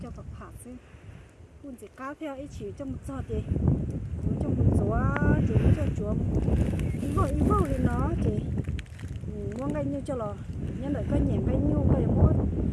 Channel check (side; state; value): both; identical; correlation 1.00